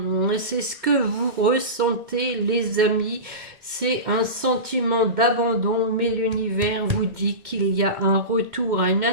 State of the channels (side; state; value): left; late; 2.1 ms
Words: c'est ce que vous ressentez les amis, c'est un sentiment d'abandon, mais l'univers vous dit qu'il y a un retour à une